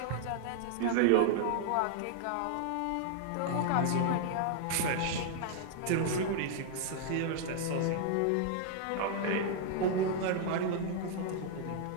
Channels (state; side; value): different; both; correlation 0.00